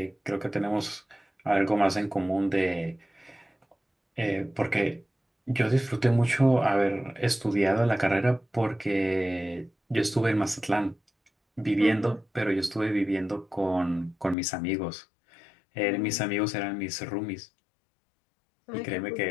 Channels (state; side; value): drops out; right; at 14.4 s